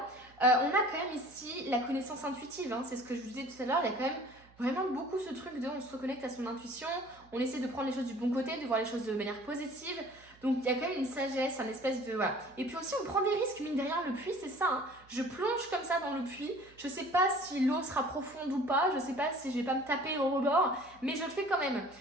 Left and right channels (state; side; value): noise; right; hum, 27 dB below the sound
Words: On a quand même ici la connaissance intuitive, c'est ce que je vous disais tout à l'heure, il y a quand même vraiment beaucoup ce truc de on se reconnecte à son intuition, on essaie de prendre les choses du bon côté, de voir les choses de manière positive. Donc il y a quand même une sagesse, un espèce de... Voilà. Et puis aussi on prend des risques, mine de rien, le puits c'est ça. Je plonge comme ça dans le puits, je sais pas si l'eau sera profonde ou pas, je sais pas si je vais pas me taper au rebord, mais je le fais quand même.